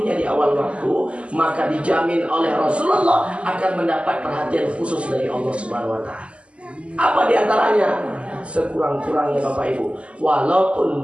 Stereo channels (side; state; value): left; late; 0.058 ms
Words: di awal waktu, maka dijamin oleh Rasulullah akan mendapat perhatian khusus dari Allah Subhanahu wa taala. Apa diantaranya? Sekurang-kurangnya Bapak Ibu, walaupun